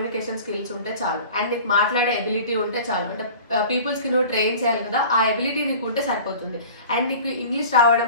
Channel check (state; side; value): inverted; both; correlation -0.41